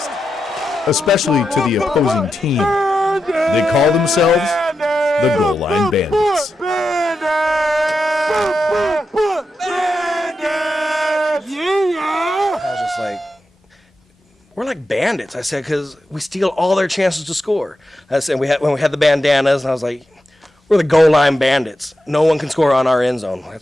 especially to the opposing team. They call themselves the Goal Line Bandits. I was just like, we're like bandits, I said, because we steal all their chances to score. I said, when we had the bandanas, and I was like, we're the Goal Line Bandits. No one can score on our end zone.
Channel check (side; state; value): both; normal; correlation 0.88